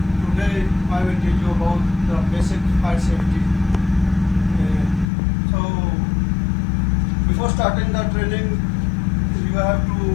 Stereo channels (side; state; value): right; drops out; at 5.1 s